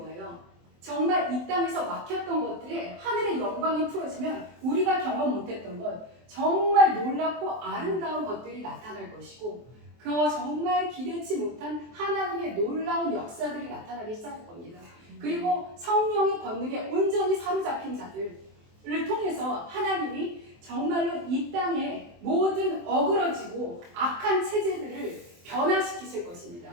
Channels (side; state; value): left; late; 23 ms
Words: 정말 이 땅에서 막혔던 것들에 하늘의 영광이 풀어지면 우리가 경험 못했던 것, 정말 놀랍고 아름다운 것들이 나타날 것이고 정말 기대치 못한 하나님의 놀라운 역사들이 나타나기 시작할 겁니다. 그리고 성령의 권능에 온전히 사로잡힌 자들을 통해서 하나님이 정말로 이 땅의 모든 어그러지고 악한 체제들을 변화시키실 것입니다.